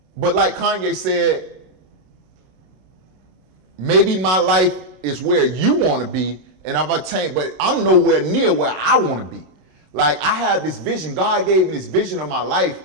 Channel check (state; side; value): late; left; 32 ms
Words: But like Kanye said, maybe my life is where you want to be, and I've attained, but I'm nowhere near where I want to be. Like, I have this vision. God gave me this vision of my life,